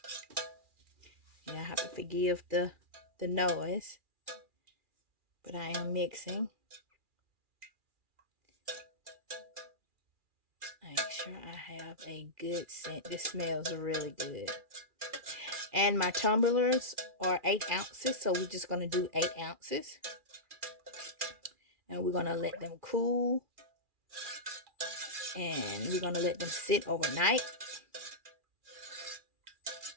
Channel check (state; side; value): late; left; 2.4 ms